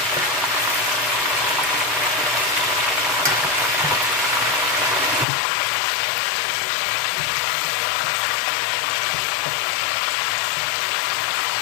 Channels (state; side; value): drops out; right; at 5.2 s